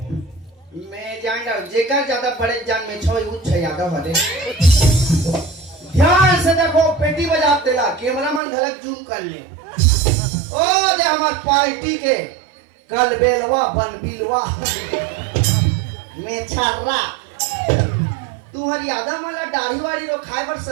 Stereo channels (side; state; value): left; drops out; at 8.4 s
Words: मैं जान रहा जेकर ज्यादा बड़े जान में छो उच्च यादव हरे ध्यान से देखो पेटी बजा तेला कैमरामैन गलत जूम कर ले ओ दे हमार पार्टी के कल बेलवा बन बिलवा में छर्रा तुम्हारी यादव वाला दाढ़ी वाड़ी रो खाए पर